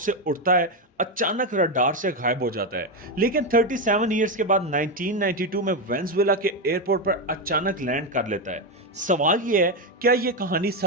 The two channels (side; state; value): both; normal; correlation 0.09